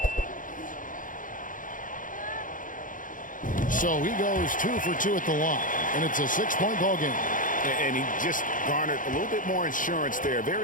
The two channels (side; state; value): right; late; 0.39 ms